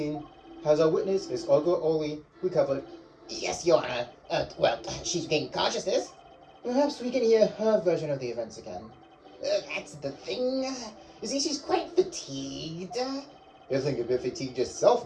Has our witness, Miss Olga Oli, recovered? Yes, Your Honor. Well, she's gained consciousness. Perhaps we can hear her version of the events again. That's the thing. You see, she's quite fatigued. You think a bit fatigued yourself,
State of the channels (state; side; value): identical; both; correlation 1.00